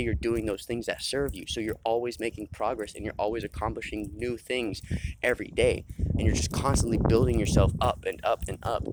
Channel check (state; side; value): identical; both; correlation 1.00